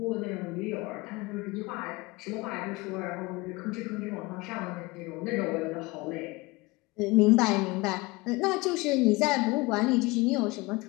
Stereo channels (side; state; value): right; quieter; 23.2 dB